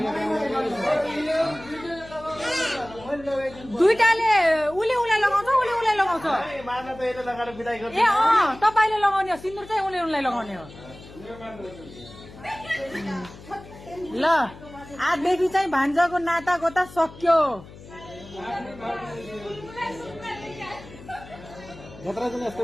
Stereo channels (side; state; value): left; noise; hum, 18 dB below the sound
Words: दुईटाले उसले उसलाई लगाउँछ, उसले उसलाई लगाउँछ। ए तपाईँले लगाउने हो, सिन्दुर चाहिँ उसले उसलाई लगाउने हो। ल आजदेखि चाहिँ भान्जाको नाता गोता सक्यो।